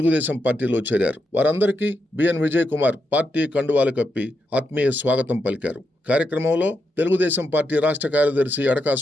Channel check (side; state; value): both; normal; correlation 0.84